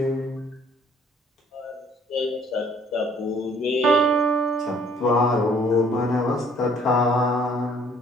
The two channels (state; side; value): normal; both; correlation 0.59